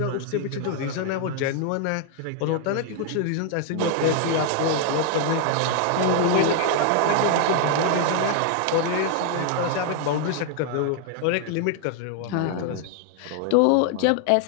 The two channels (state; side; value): different; both; correlation 0.00